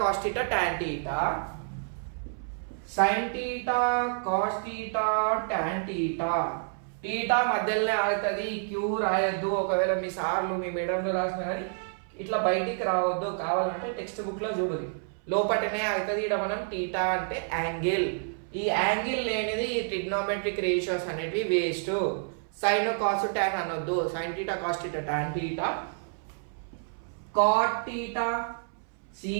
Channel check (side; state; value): left; silent; 59 dB below the other